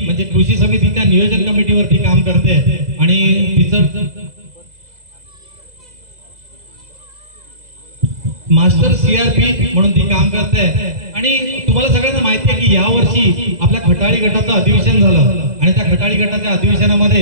म्हणजे कृषी समितीच्या नियोजन कमिटीवरती काम करते आणि तिचं मास्टर सीआरपी म्हणून ती काम करते। आणि तुम्हाला सगळ्यांना माहिती आहे की यावर्षी आपल्या खटाळी गटाचं अधिवेशन झालं आणि त्या खटाळी गटाच्या अधिवेशनामध्ये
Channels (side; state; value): left; late; 2.0 ms